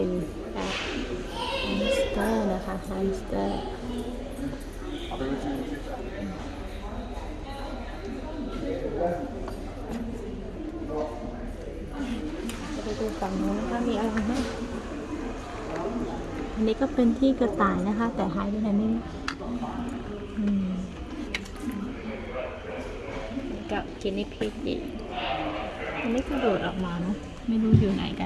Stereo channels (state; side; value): identical; both; correlation 1.00